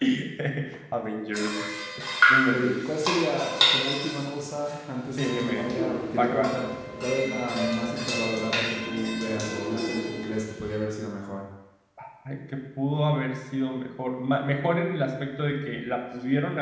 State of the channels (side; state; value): both; identical; correlation 1.00